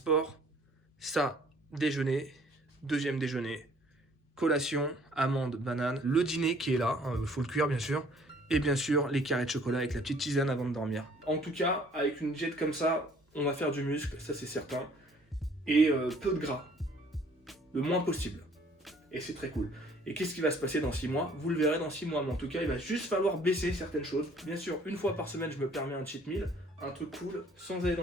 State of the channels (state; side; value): normal; both; correlation 0.57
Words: ça déjeuner, deuxième déjeuner, collation, amande, banane, le dîner qui est là, faut le cuire bien sûr, et bien sûr les carrés de chocolat avec la petite tisane avant de dormir. En tout cas, avec une diète comme ça, on va faire du muscle, ça c'est certain, et peu de gras, le moins possible, et c'est très cool. Et qu'est-ce qui va se passer dans 6 mois? Vous le verrez dans 6 mois, mais en tout cas il va juste falloir baisser certaines choses. Bien sûr, une fois par semaine je me permets un cheat meal, un truc cool, sans aller